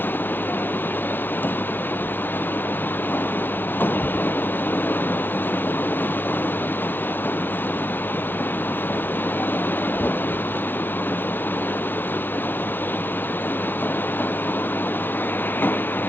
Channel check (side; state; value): right; late; 0.096 ms